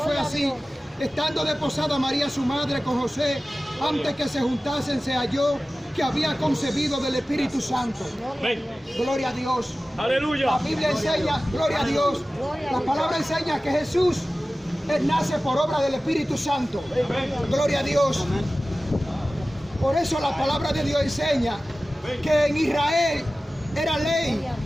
así. Estando desposada María su madre con José, antes que se juntasen, se halló que había concebido del Espíritu Santo. Gloria a Dios. Aleluya. La Biblia enseña, gloria a Dios. La palabra enseña que Jesús Él nace por obra del Espíritu Santo. Gloria a Dios. Por eso la palabra de Dios enseña que en Israel era ley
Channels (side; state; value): both; normal; correlation 0.96